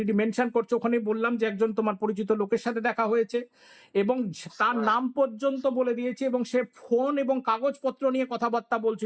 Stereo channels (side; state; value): both; identical; correlation 1.00